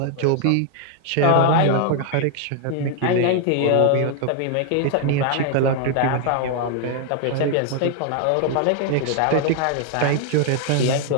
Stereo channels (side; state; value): both; different; correlation 0.00